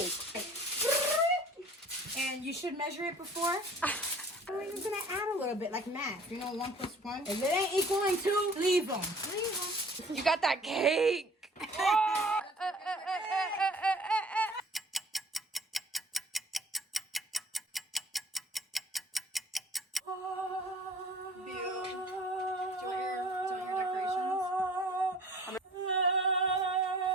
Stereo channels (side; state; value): both; normal; correlation 0.50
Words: And you should measure it before. We're just gonna add a little bit, like math. You know, 1 + 1. If it ain't equaling 2, leave them. You got that cake.